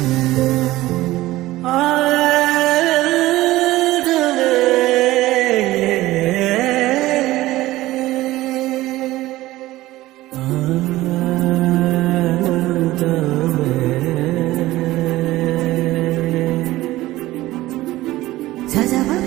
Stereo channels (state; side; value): quieter; left; 17.1 dB